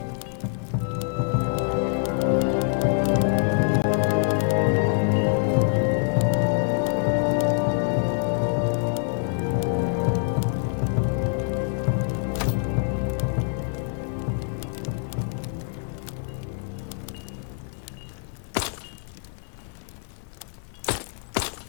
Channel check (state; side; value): silent; right; 57 dB below the other